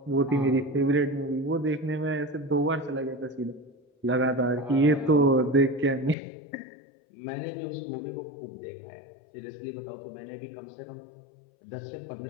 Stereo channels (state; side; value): drops out; right; at 6.2 s